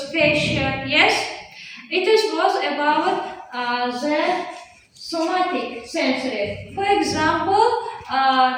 fascia. Yes, was about the somatic sensory. For example,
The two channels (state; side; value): identical; both; correlation 1.00